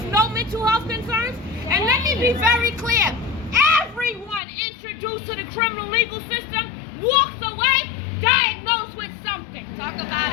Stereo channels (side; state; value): right; drops out; at 4.4 s